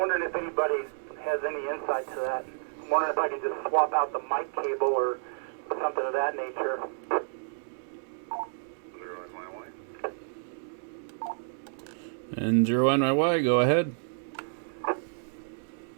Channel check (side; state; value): left; silent; digital silence